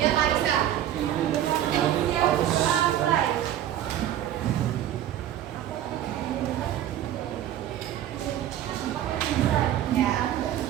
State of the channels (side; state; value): left; quieter; 11.7 dB